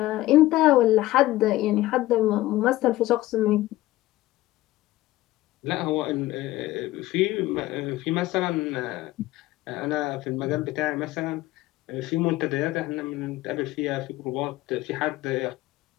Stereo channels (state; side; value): quieter; right; 16.8 dB